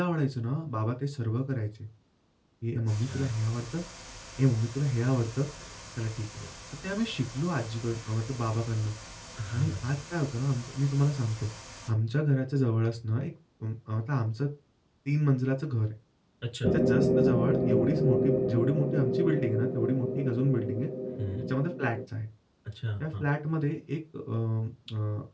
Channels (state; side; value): identical; both; correlation 1.00